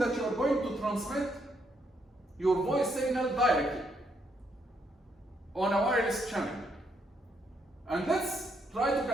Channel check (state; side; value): normal; both; correlation 0.75